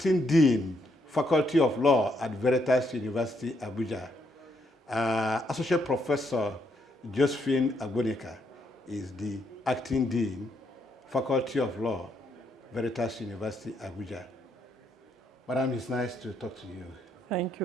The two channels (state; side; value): normal; both; correlation 0.75